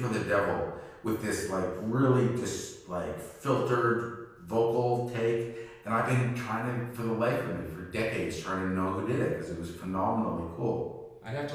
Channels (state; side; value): identical; both; correlation 1.00